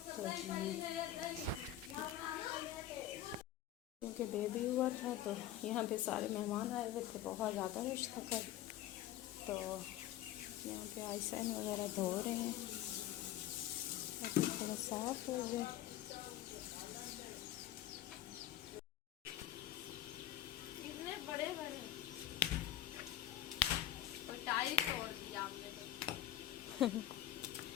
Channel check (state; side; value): quieter; right; 12.7 dB